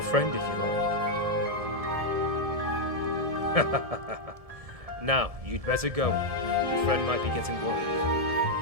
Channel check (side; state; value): left; late; 1.7 ms